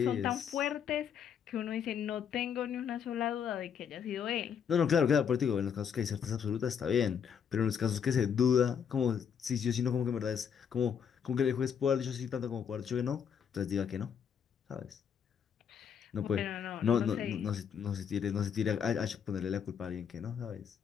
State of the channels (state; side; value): quieter; right; 7.6 dB